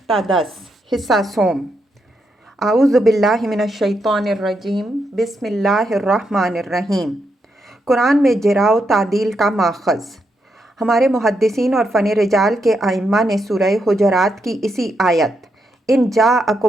تا 10، حصہ سوم۔ اعوذ باللہ من الشیطان الرجیم، بسم اللہ الرحمن الرحیم۔ قرآن میں جرا و تعدیل کا ماخذ۔ ہمارے محدثین اور فن رجال کے ائمہ نے سورہ حجرات کی اسی آیت ان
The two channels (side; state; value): both; normal; correlation 0.81